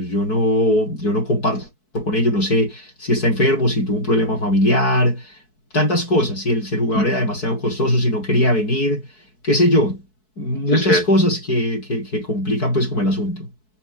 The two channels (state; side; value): late; right; 4.6 ms